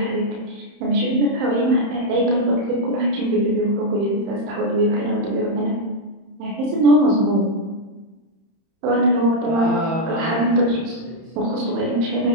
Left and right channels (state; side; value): late; left; 31 ms